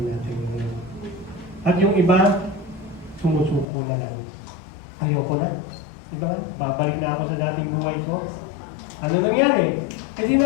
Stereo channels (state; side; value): drops out; right; at 3.7 s